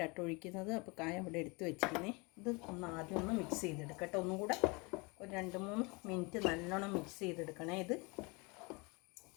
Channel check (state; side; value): quieter; right; 28.2 dB